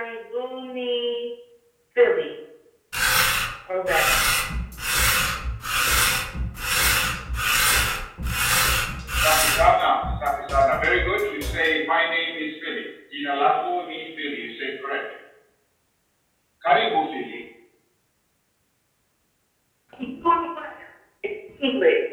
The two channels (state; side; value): identical; both; correlation 1.00